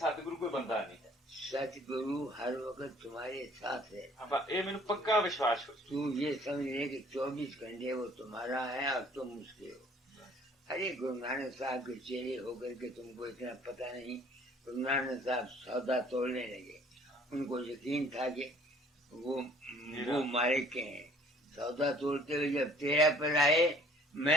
ਕੋਈ ਬੰਦਾ ਨਹੀਂ ਹੈ सतगुरु हर वक्त तुम्हारे साथ है। ਆਪਾਂ ਇਹ ਮੈਨੂੰ ਪੱਕਾ ਵਿਸ਼ਵਾਸ ਹੋ तू ये समझ ले कि 24 घंटे वो तुम्हारा है और तुम उसके हो। अरे गुरु नानक साहब के चेहरे होकर के तुमको इतना पता नहीं। गुरु नानक साहब सौदा तोड़ने लगे, उनको यकीन था कि वो मालिक के हैं। सौदा तोड़ते हुए जब तेरा पर आए,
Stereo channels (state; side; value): normal; both; correlation 0.55